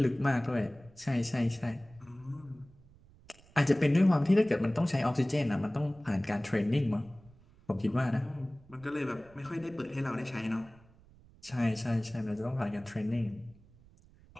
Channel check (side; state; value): right; noise; rumble, 26 dB below the sound